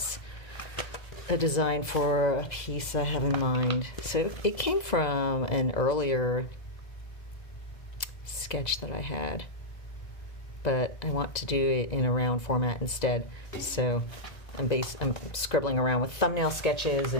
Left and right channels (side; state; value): right; late; 2.0 ms